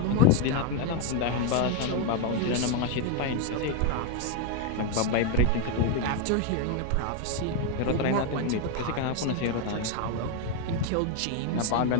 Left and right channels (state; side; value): different; both; correlation 0.01